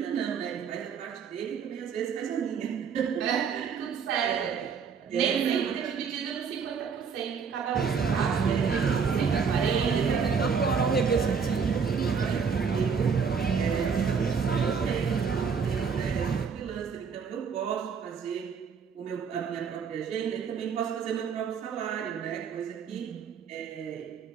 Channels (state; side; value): quieter; left; 6.2 dB